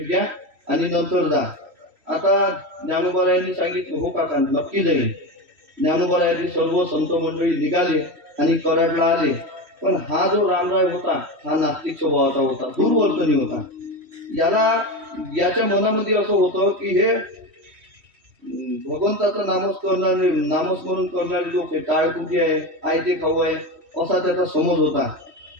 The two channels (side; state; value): left; late; 3.1 ms